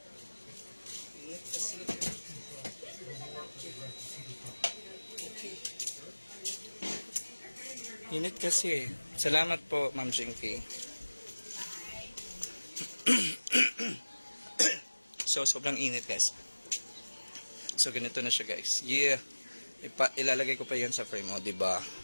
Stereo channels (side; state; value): both; inverted; correlation -1.00